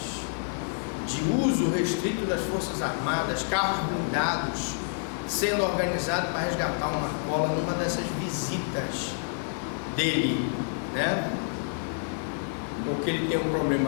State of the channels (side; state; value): right; silent; 59 dB below the other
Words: de uso restrito das Forças Armadas, carros blindados, sendo organizado para resgatar uma cola numa dessas visitas dele, né? Porque ele tem um